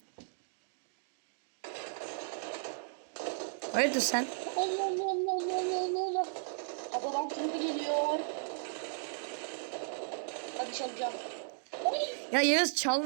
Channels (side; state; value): left; silent; digital silence